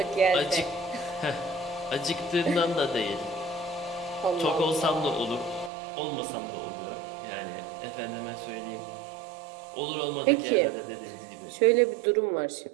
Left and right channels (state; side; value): drops out; left; at 5.7 s